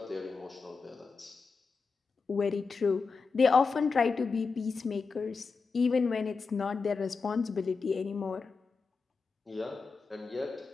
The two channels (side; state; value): right; quieter; 4.8 dB